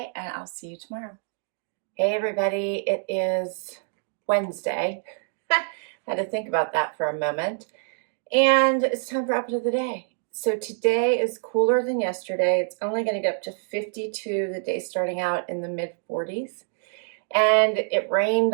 and I'll see you tomorrow. Hey, everybody. It is Wednesday. Had to think about that for a moment. And it's time for outfit of the day. So today is cooler than yesterday. It's only going to get up to 52, the day starting out in the mid-40s. And it rained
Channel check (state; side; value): silent; left; digital silence